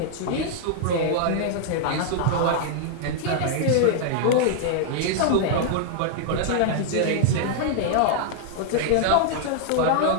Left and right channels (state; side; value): different; both; correlation -0.01